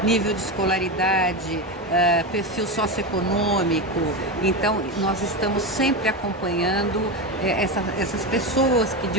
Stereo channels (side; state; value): both; normal; correlation 0.16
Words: nível de escolaridade, perfil socioeconômico. Então, nós estamos sempre acompanhando essas pessoas que